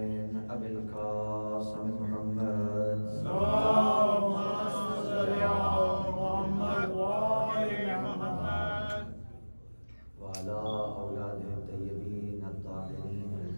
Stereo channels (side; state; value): both; inverted; correlation -1.00